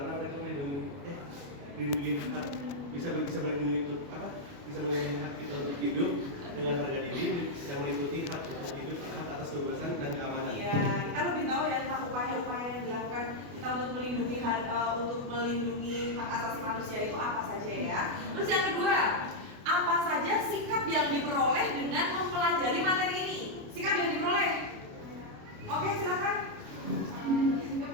mereka melindungi hak, bisa melindungi untuk apa? Bisa melindungi hak kita untuk hidup dengan harga diri, yang meliputi hak untuk hidup, hak atas kebebasan dan keamanan. Iya, kita lebih tahu ya tentang upaya-upaya yang dilakukan kita untuk melindungi hak asasi manusia itu apa saja ya. Terus yang kedua, apa saja sikap yang diperoleh dengan mempelajari materi ini? Sikap yang diperoleh. Oke, silakan. Sikap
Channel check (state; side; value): late; left; 28 ms